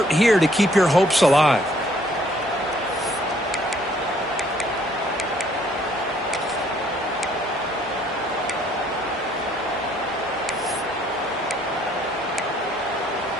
here to keep your hopes alive.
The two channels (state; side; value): normal; both; correlation 0.63